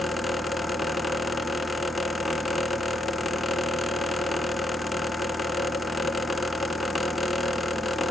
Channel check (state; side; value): normal; both; correlation 0.77